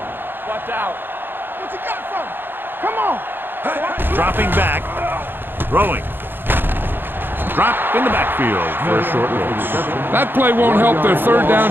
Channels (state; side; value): late; left; 0.098 ms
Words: Watch out. What you got from? Come on. Dropping back. Throwing. Drop in the backfield for a short loss. That play won't help their 3rd